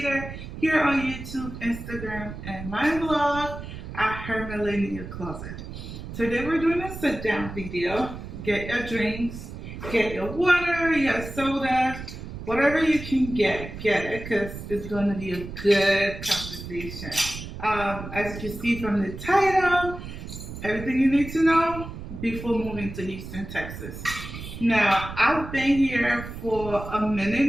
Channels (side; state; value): right; noise; rumble, 10 dB below the sound